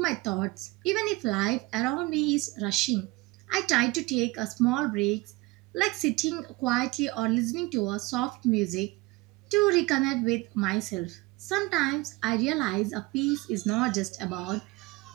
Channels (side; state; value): left; quieter; 22.1 dB